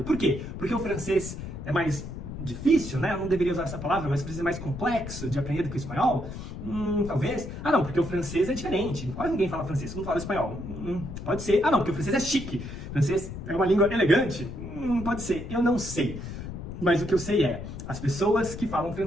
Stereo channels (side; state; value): left; noise; rumble, 9 dB below the sound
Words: Por quê? Porque o francês é mais difícil, né? Eu não deveria usar essa palavra, mas precisa mais complexo de aprender do que o espanhol? Talvez. Ah, não, porque o francês é diferente. Quase ninguém fala francês, todo mundo fala espanhol. Pode ser. Ah, não, porque o francês é chique. O francês é uma língua elegante. Pode ser. Eu não sei. Mas o que eu sei é, as pessoas que falam